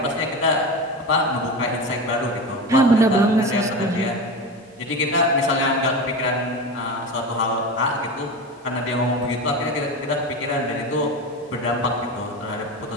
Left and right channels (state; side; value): normal; both; correlation 0.24